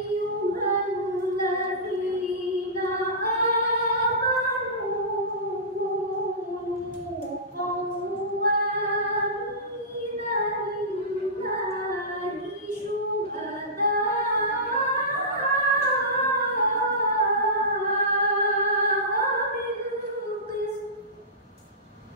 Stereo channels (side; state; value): both; normal; correlation -0.19